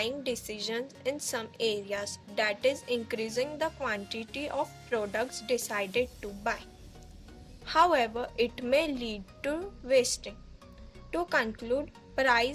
decisions in some areas, that is, increasing the quantity of products decided to buy. However, it may lead to wasting. To conclude,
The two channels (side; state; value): both; identical; correlation 1.00